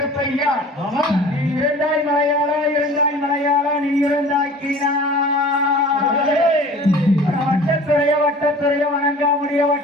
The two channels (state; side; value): normal; both; correlation 0.44